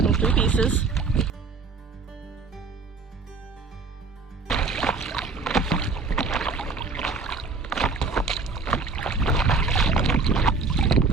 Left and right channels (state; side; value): quieter; left; 4.4 dB